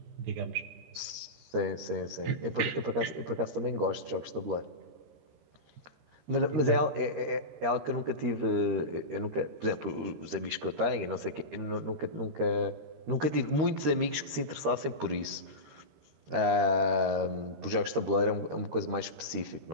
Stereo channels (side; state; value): left; late; 13 ms